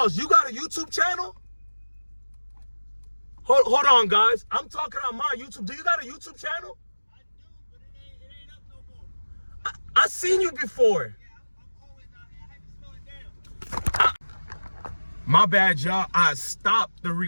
you got a YouTube channel? Hold on, guys. I'm talking on my YouTube. Do you got a YouTube channel? I do, but it ain't up no more. I seen you before. Yeah, I'm always out here. I had to slow it down. My bad, y'all. I stopped the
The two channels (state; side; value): inverted; both; correlation -1.00